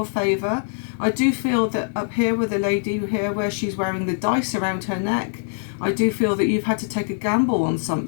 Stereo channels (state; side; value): silent; right; digital silence